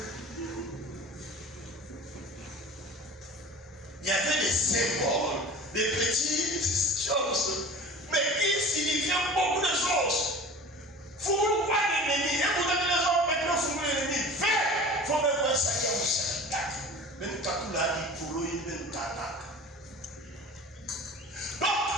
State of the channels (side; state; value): both; normal; correlation 0.39